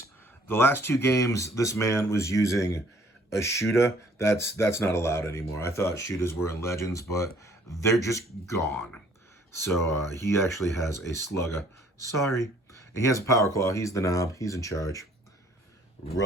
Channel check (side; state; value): both; normal; correlation 0.59